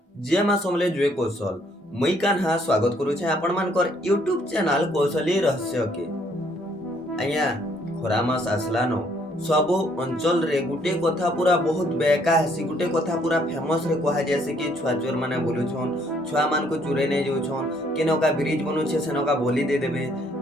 जे मा समले जुए कौशल मुई कान्हा स्वागत करुछे आपण मानकर यूट्यूब चैनल कौशली रहस्य के आज्ञा खरा मास आसलानो सबो अंचल रे गुटे कथा पूरा बहुत बेका हसी गुटे कथा पूरा फेमस रे कहा जैसे कि छुआ चोर माने बोलुछन छुआ मान को चुरे नै जाउछन केनका ब्रिज बनुछे सेनका बोली दे देबे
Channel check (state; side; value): normal; both; correlation 0.66